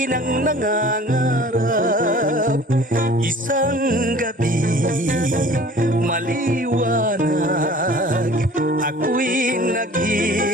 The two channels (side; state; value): both; normal; correlation 0.47